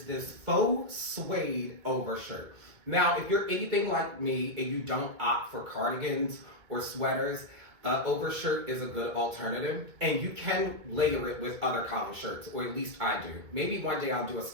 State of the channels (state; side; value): late; left; 2.2 ms